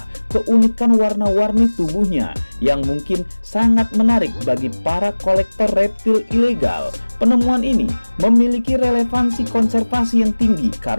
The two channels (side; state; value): both; inverted; correlation -1.00